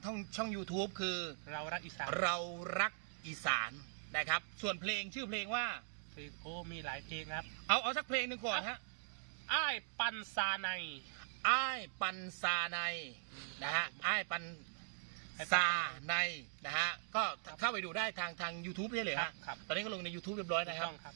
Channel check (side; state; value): left; silent; digital silence